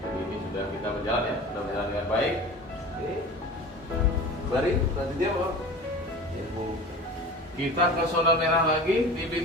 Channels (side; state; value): both; normal; correlation 0.36